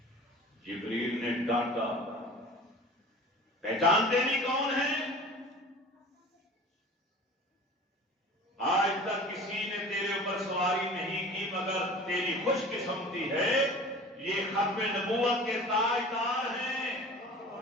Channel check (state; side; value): normal; both; correlation 0.41